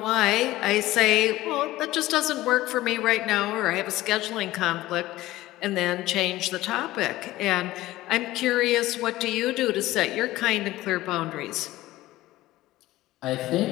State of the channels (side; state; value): right; quieter; 16.8 dB